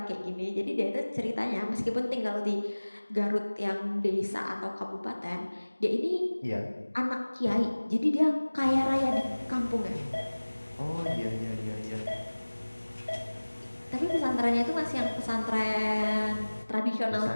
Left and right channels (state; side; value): inverted; both; correlation -1.00